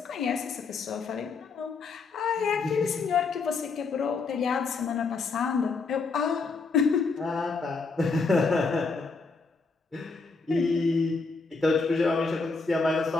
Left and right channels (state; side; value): quieter; right; 4.3 dB